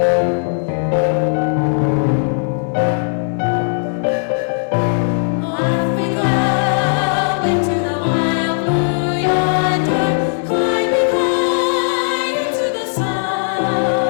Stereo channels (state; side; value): silent; right; digital silence